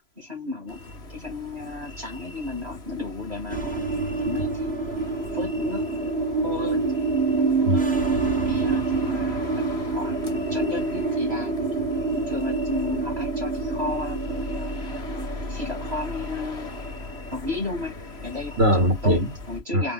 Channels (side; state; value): left; late; 3.0 ms